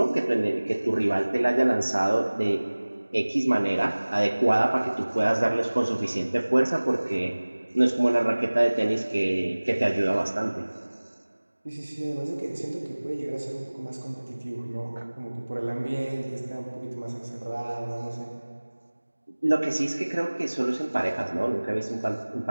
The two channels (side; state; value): both; inverted; correlation -1.00